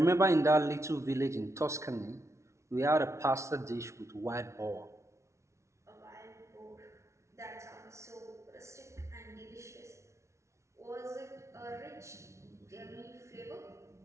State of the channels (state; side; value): late; left; 0.14 ms